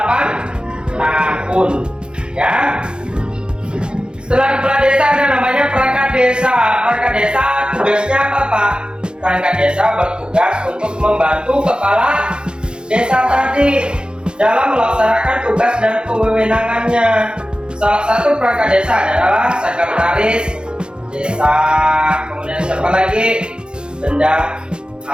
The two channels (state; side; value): late; left; 0.050 ms